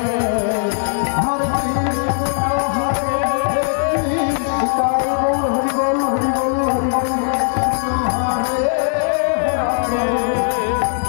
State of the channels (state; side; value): silent; right; 67 dB below the other